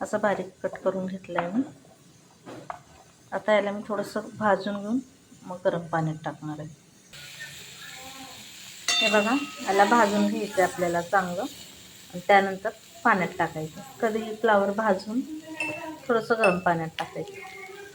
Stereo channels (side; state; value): both; identical; correlation 1.00